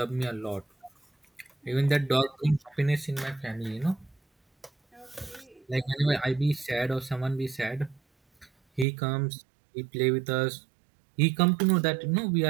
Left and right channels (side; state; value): left; drops out; at 8.8 s